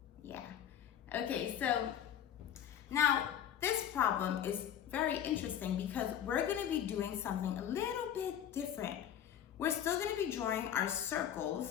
Yeah. Okay, so now this problem is very interesting because we're going to be doing something a little bit different. We're still going to be drawing our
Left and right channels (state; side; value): quieter; right; 9.8 dB